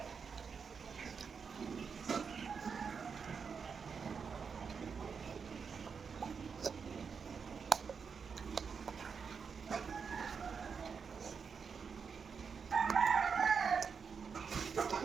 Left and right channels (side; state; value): left; quieter; 5.9 dB